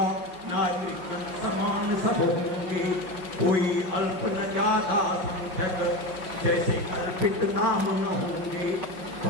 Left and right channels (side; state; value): left; late; 5.7 ms